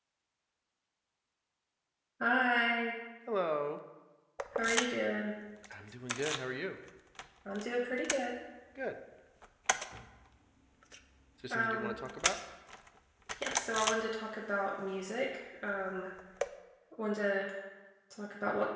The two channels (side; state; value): both; identical; correlation 1.00